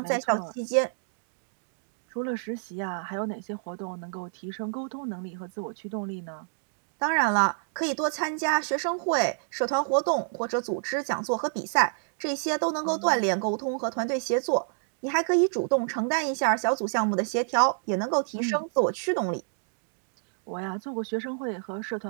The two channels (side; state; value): left; silent; digital silence